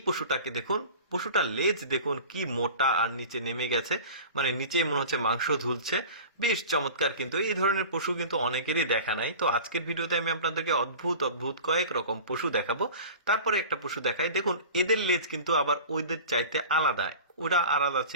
পশুটাকে দেখুন, পশুটার লেজ দেখুন কি মোটা, আর নিচে নেমে গেছে, মানে নিচে মনে হচ্ছে মাংস ঝুলছে, বেশ চমৎকার। কিন্তু এই ধরনের পশু কিন্তু অনেকেরই দেখা নাই। তো আজকের ভিডিওতে আমি আপনাদেরকে অদ্ভুত অদ্ভুত কয়েক রকম পশু দেখাবো। তারপরে একটা পশু দেখাই, দেখুন এদের লেজ কিন্তু আবার ওইদের চাইতে আলাদা। ওরা আলাদা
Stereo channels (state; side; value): inverted; both; correlation -0.38